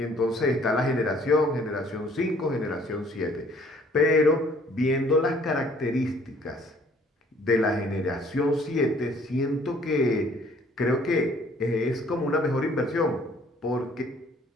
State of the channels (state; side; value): normal; both; correlation 0.58